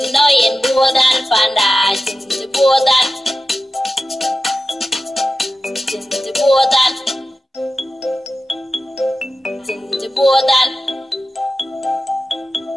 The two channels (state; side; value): normal; both; correlation 0.93